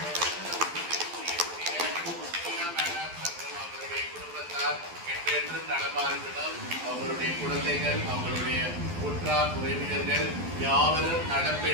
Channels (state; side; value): late; left; 12 ms